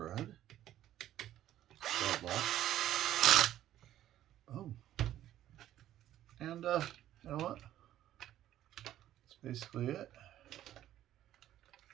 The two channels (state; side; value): quieter; left; 12.6 dB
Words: Lock. Boom. And you know what? That's basically it.